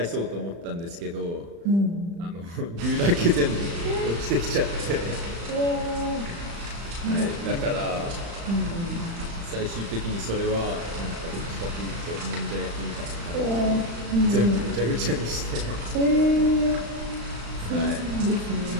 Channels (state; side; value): late; left; 35 ms